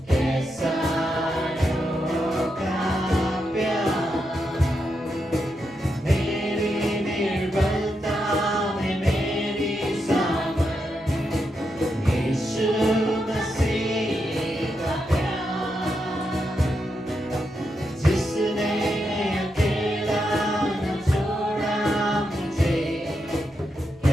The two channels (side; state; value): right; noise; rumble, 28 dB below the sound